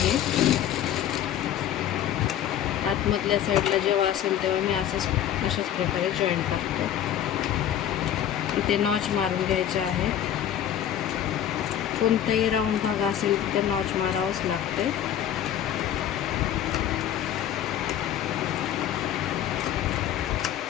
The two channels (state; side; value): quieter; right; 10.6 dB